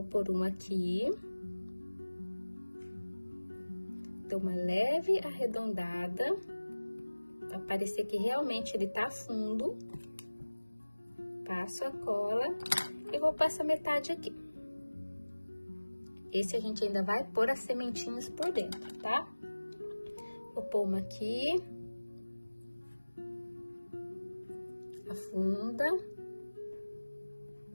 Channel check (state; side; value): inverted; both; correlation -1.00